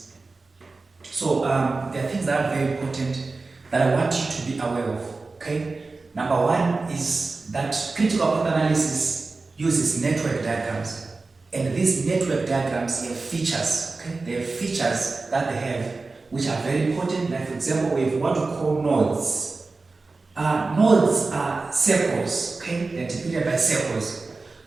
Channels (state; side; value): quieter; left; 3.7 dB